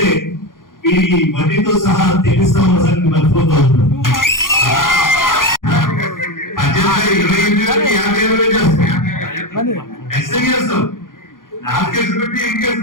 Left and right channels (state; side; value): late; right; 0.90 ms